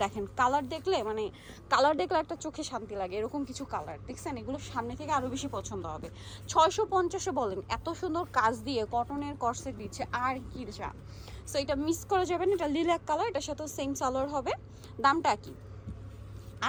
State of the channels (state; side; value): identical; both; correlation 1.00